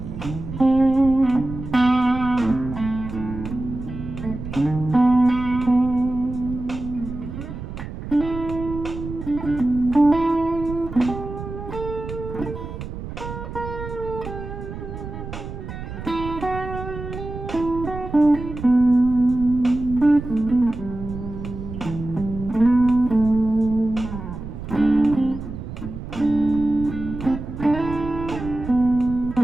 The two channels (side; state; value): right; noise; rumble, 9 dB below the sound